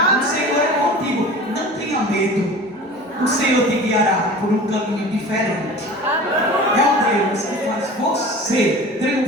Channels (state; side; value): normal; both; correlation 0.38